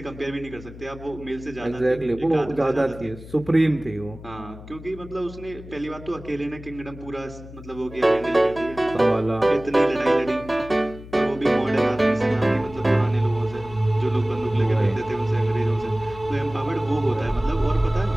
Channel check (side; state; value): left; noise; hum, 16 dB below the sound